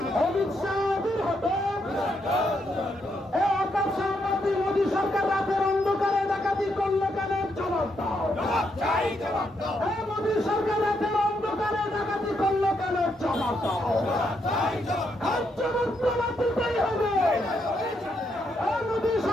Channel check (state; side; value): normal; both; correlation 0.78